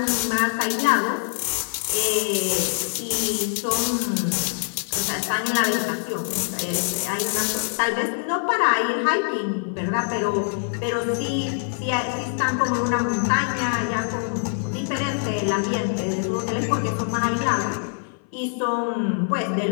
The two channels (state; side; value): silent; right; 56 dB below the other